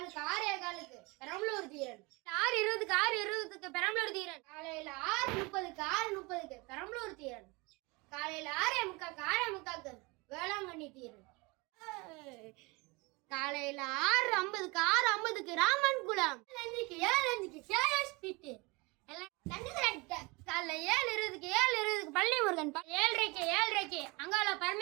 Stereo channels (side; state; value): left; quieter; 26.0 dB